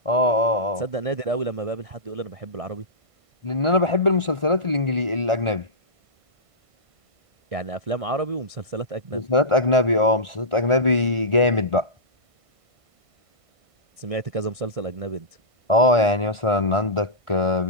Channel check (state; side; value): late; left; 1.5 ms